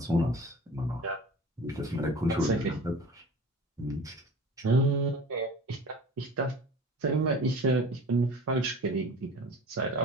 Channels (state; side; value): normal; both; correlation 0.40